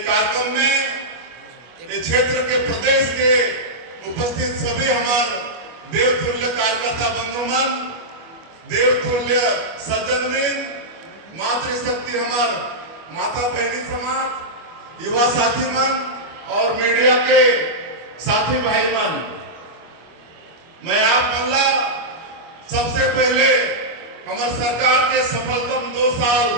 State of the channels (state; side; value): late; left; 25 ms